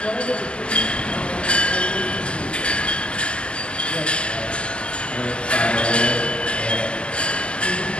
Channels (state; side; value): late; right; 0.052 ms